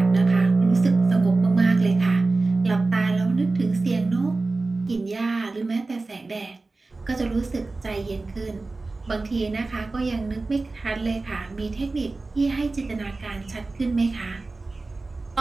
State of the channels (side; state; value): left; quieter; 3.5 dB